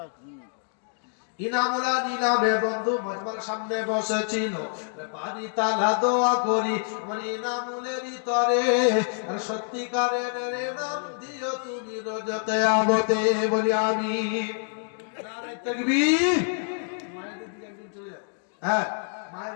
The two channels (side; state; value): right; silent; 60 dB below the other